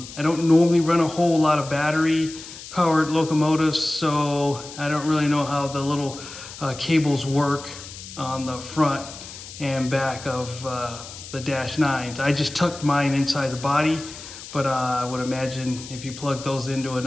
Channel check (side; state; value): left; noise; hiss, 14 dB below the sound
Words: don't normally run a whole lot of battery powered locomotives, so I don't really know how the little cables work on the front and back of the Dash 9s. I just tucked mine inside the body, but I would imagine if you plug those into